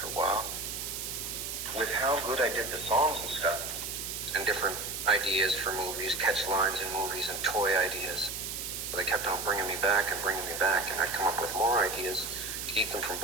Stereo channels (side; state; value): right; noise; hiss, 5 dB below the sound